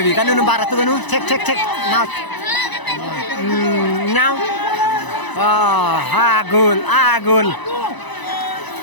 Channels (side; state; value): right; late; 1.0 ms